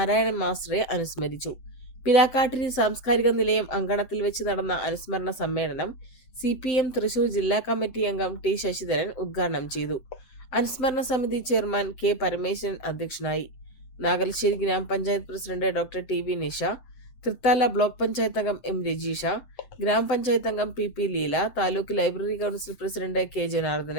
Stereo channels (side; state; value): right; late; 7.8 ms